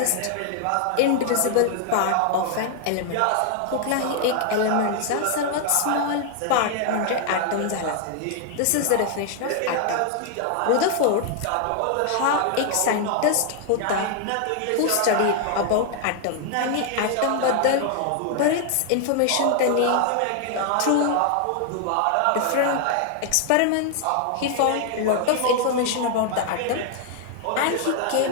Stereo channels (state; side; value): different; both; correlation 0.00